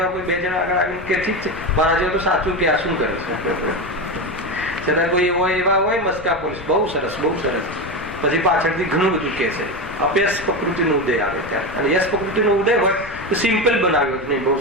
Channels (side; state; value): left; noise; rumble, 15 dB below the sound